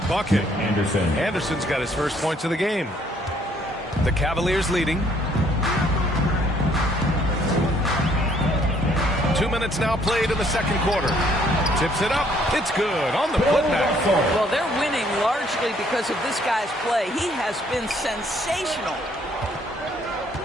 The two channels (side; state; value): both; normal; correlation 0.64